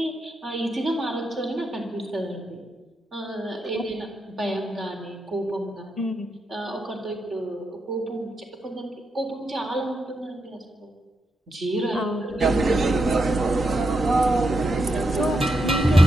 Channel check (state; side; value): normal; both; correlation 0.83